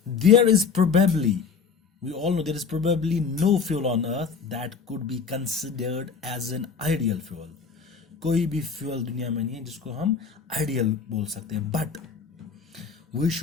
there is probably, we all know there is probably no fuel on earth that could be considered as an ideal fuel. कोई भी fuel दुनिया में नहीं है जिसको हम ideal बोल सकते हैं. But we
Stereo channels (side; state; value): right; quieter; 5.7 dB